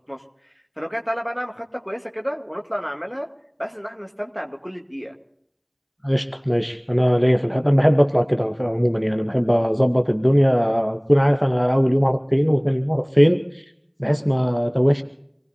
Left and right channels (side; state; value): both; identical; correlation 1.00